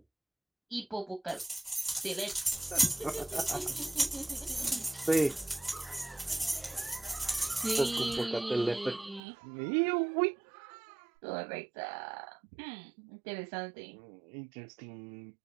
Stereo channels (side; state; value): left; drops out; at 9.2 s